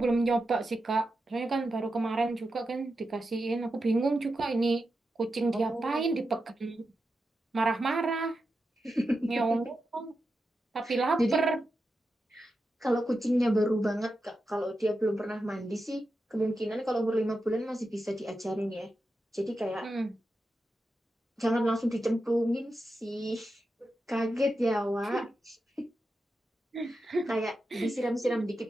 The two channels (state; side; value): normal; both; correlation 0.89